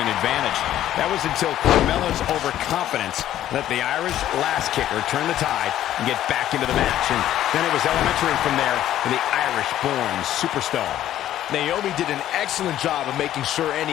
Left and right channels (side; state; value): right; quieter; 12.4 dB